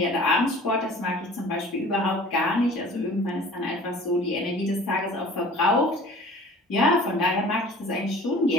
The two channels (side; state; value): both; normal; correlation 0.46